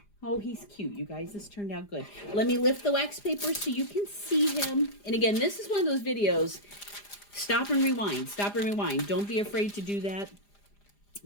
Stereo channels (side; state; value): right; late; 4.9 ms